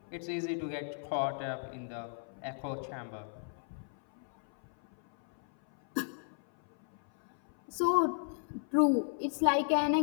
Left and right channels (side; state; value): right; silent; 55 dB below the other